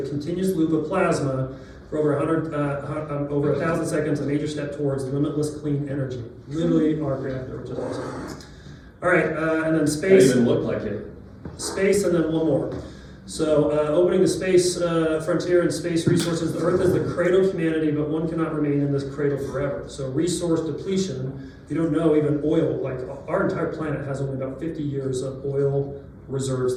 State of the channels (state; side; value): identical; both; correlation 1.00